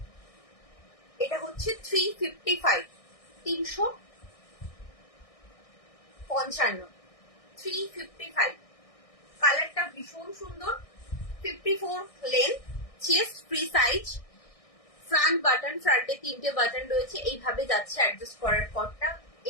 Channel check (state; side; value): late; right; 1.6 ms